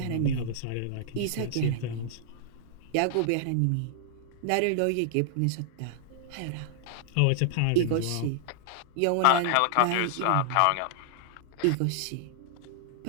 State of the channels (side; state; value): both; different; correlation -0.01